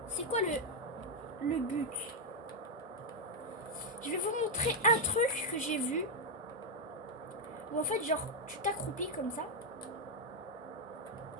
C'est quoi le but? Je vais vous montrer un truc que j'ai vu. Où en fait, genre, tu t'accroupis comme ça.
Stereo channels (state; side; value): normal; both; correlation 0.01